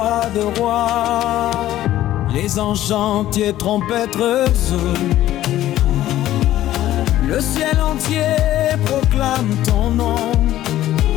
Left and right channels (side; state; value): right; quieter; 13.7 dB